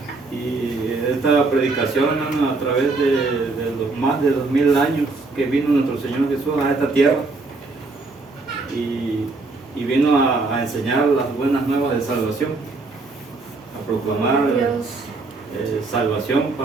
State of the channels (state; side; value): quieter; left; 3.6 dB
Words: Y esta predicación, hermano, a través de los más de 2000 años que vino nuestro Señor Jesús a esta tierra y vino a enseñar las buenas nuevas de salvación, a proclamar Dios. salvación